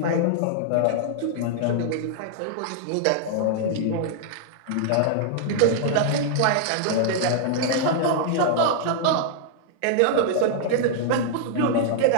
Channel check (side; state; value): both; different; correlation -0.01